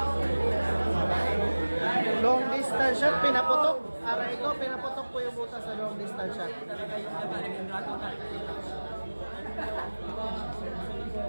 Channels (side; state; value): both; inverted; correlation -1.00